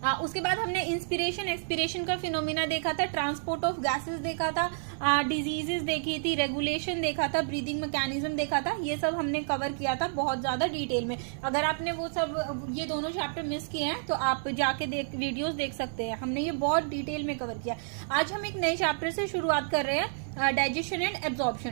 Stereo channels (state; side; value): silent; left; 58 dB below the other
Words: उसके बाद हमने इंस्पिरेशन एक्सपिरेशन का फिनोमिना देखा था, ट्रांसपोर्ट ऑफ गैसेस देखा था, डिजीजेस देखी थी, रेगुलेशन देखा था, ब्रीदिंग मैकेनिज्म देखा था। ये सब हमने कवर किया था बहुत ज्यादा डिटेल में। अगर आपने वो सब ये दोनों चैप्टर मिस किए हैं तो आप जाके वीडियोस देख सकते हैं। हमने ये बहुत डिटेल में कवर किया। आज हम एक नए चैप्टर से शुरुआत कर रहे हैं, डाइजेशन एंड